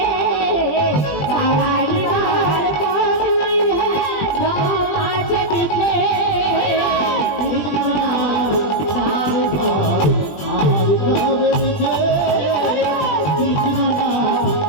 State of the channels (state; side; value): late; right; 21 ms